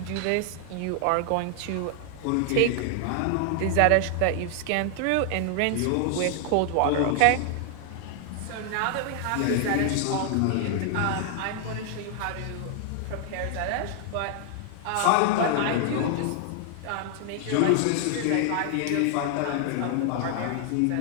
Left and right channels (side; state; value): both; different; correlation 0.00